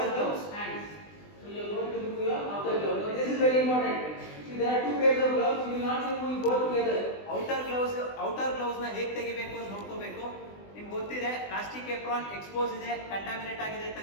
is the hands. So you are going to remove your outer glove. Now this is very important. See, there are two pairs of gloves. You will not remove both together. Outer ಗ್ಲೌಸ್ನ ಹೇಗೆ ತೆಗಿಬೇಕು ಅಂತ ನೋಡ್ಕೋಬೇಕು. ನಿಮ್ಗೆ ಗೊತ್ತಿದೆ plastic apron expose ಇದೆ, contaminate ಆಗಿದೆ,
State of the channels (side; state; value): right; late; 20 ms